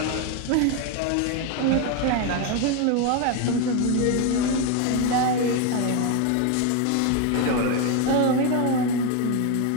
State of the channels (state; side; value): different; both; correlation 0.02